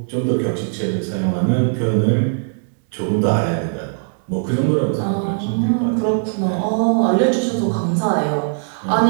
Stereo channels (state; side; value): silent; left; digital silence